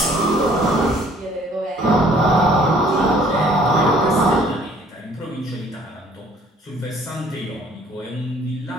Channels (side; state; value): both; normal; correlation 0.57